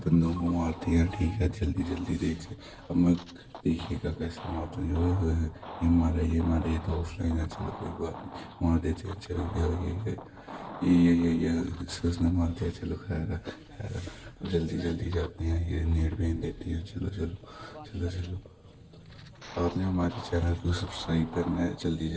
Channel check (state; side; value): identical; both; correlation 1.00